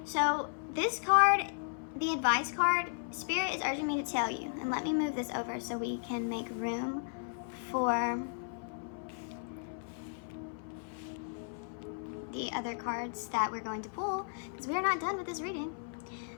So this card, the advice card, Spirit is urging me to tell you, and let me move this over so we can make room for the other cards that we're going to pull, because we're not done with this reading.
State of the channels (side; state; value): right; silent; 55 dB below the other